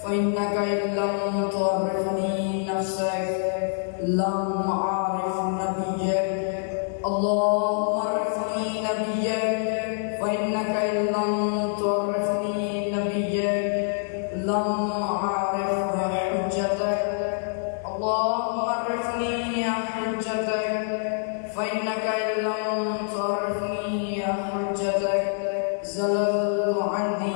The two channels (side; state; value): right; silent; digital silence